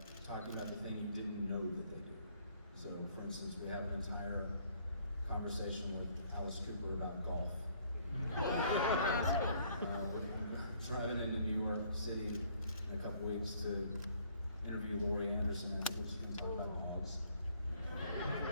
talking about the thing you didn't know that they do. So, for instance, we have an entire conversation with Alice Cooper about golf. We're driving into New York City in a couple weeks to interview Laurie Anderson, and we're just going to talk about dogs.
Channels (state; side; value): inverted; both; correlation -0.63